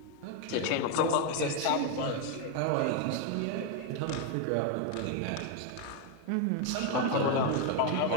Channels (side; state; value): both; different; correlation 0.01